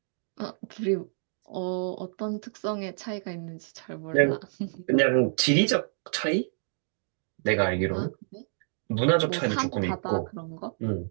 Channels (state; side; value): silent; left; digital silence